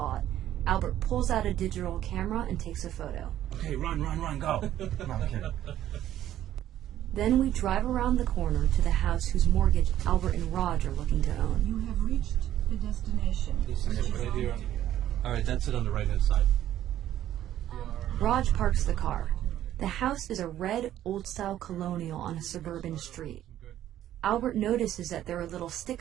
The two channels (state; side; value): quieter; left; 12.3 dB